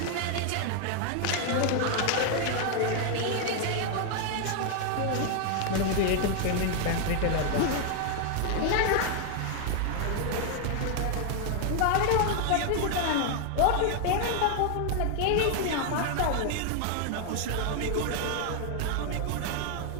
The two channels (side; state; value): both; different; correlation 0.00